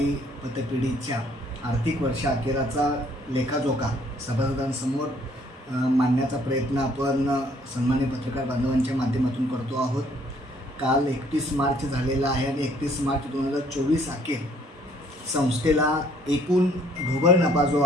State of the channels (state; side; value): normal; both; correlation 0.62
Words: पतपेढीच्या आर्थिक वर्षअखेराचा लेखाजोखा सभासदांसमोर मांडण्याचा प्रयत्न आपण सन्मान्य पत्रकार बांधवांच्या माध्यमातून करतो आहोत. काल 31 मार्च झालेला आहे आणि 31 मार्च 2024 अखेर संस्थेला एकूण ढोबळ नफा जो